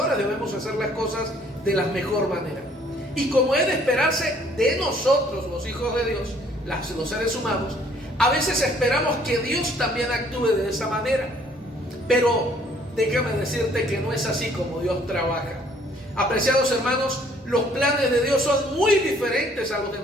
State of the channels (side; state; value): both; normal; correlation 0.61